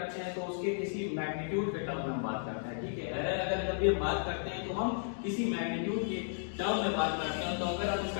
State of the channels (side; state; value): right; silent; digital silence